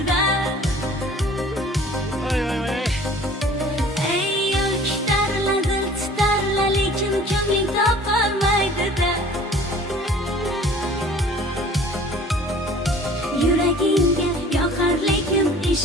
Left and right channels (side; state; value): both; normal; correlation 0.49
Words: Ey yo'lkitarla, dil titarla, lekin ko'ngling topolmaydi-da. Yuragingga yoqar, lekin